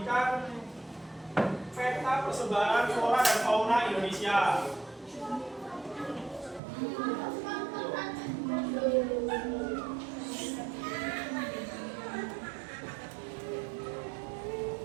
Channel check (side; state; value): left; drops out; at 6.6 s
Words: peta persebaran flora dan fauna Indonesia.